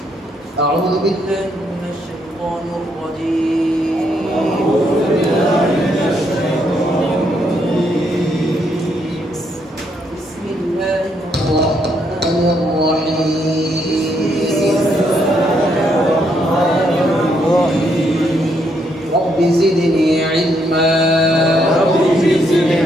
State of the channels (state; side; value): normal; both; correlation 0.75